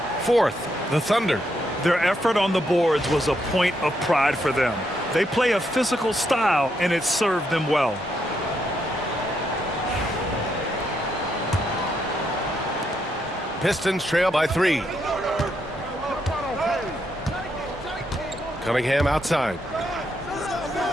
Fourth, the Thunder. Their effort on the boards was a point of pride for them. They play a physical style, and it served them well. Pistons trail by 3. Cunningham outside.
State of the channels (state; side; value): normal; both; correlation 0.78